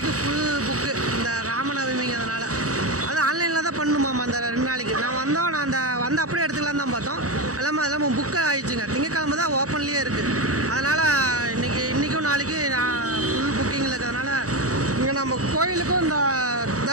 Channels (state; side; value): late; left; 0.66 ms